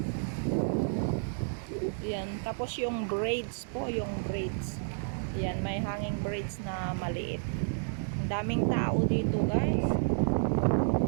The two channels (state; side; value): silent; left; digital silence